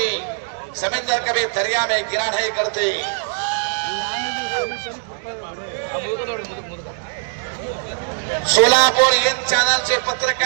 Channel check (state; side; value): silent; left; digital silence